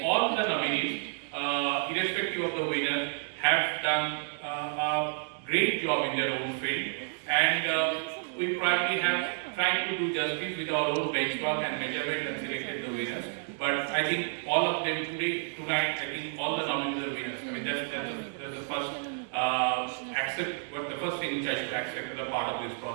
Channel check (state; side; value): silent; left; digital silence